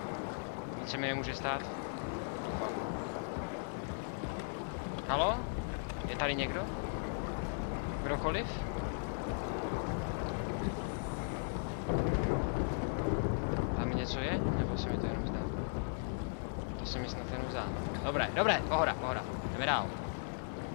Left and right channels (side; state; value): right; silent; digital silence